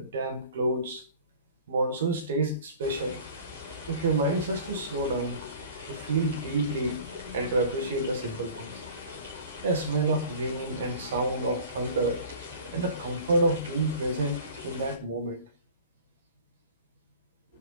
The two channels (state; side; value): inverted; both; correlation -0.44